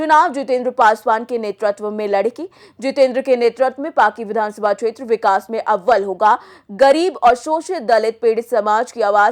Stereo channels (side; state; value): both; identical; correlation 1.00